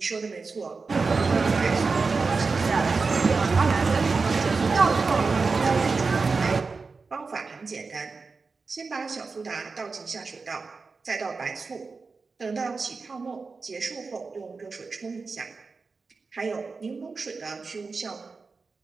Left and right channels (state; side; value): quieter; left; 4.4 dB